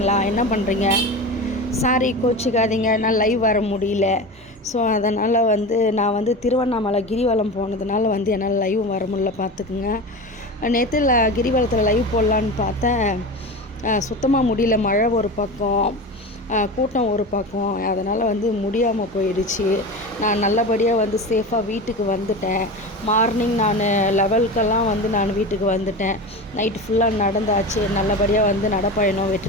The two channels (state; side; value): normal; both; correlation 0.27